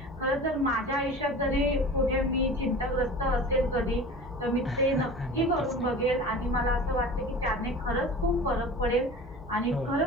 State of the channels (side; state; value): both; normal; correlation 0.37